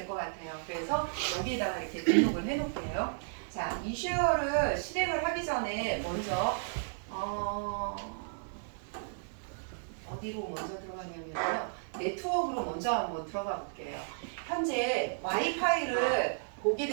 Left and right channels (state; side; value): silent; left; 55 dB below the other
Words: 것 같아요. 그래서 여기에다가 이렇게 등록을 해놓을게요. 자, 이슈어를 실행을 하기 전에 먼저 어디로 먼저 들어가냐면요. 네트워크로 먼저 한번 들어가 볼게요. 현재 와이파이를 보게